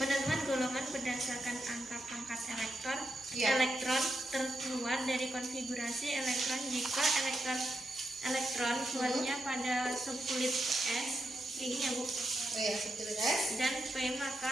Penentuan golongan berdasarkan angka pangkat elektron Iya. elektron terkeluar dari konfigurasi elektron jika elektron kuatnya pada subkulit S ini ya Bu, Oh ya, subkulit S. dan P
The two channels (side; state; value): both; normal; correlation 0.85